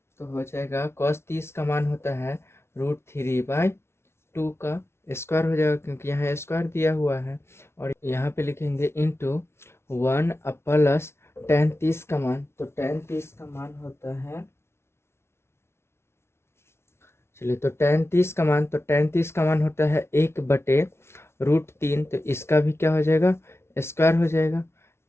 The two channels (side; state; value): right; late; 0.12 ms